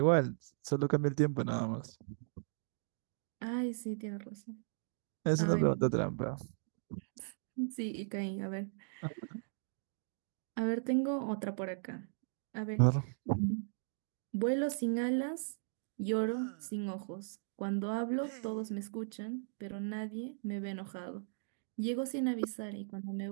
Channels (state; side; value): silent; left; digital silence